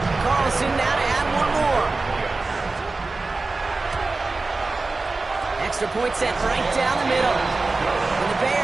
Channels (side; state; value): left; quieter; 3.6 dB